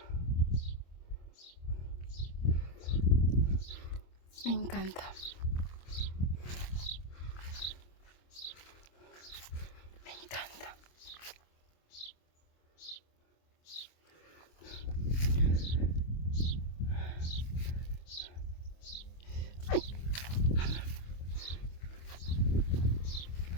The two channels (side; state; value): right; late; 25 ms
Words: Me encanta. Me encanta. ¡Ay!